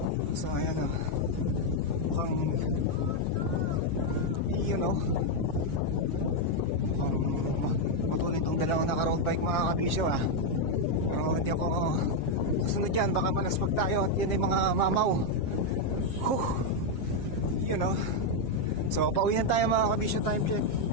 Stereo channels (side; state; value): right; late; 7.4 ms